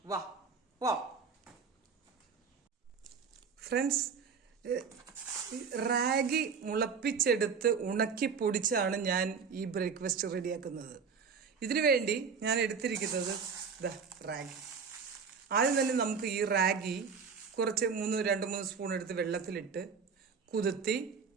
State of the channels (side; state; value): left; quieter; 5.8 dB